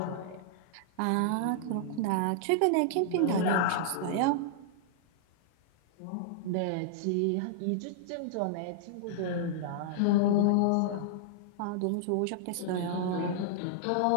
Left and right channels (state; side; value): different; both; correlation -0.01